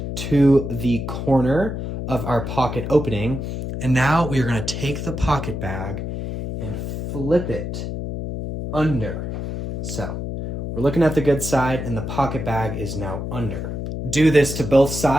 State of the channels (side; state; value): left; noise; hum, 5 dB below the sound